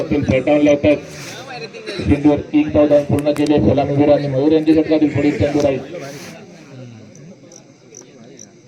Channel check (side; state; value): both; identical; correlation 1.00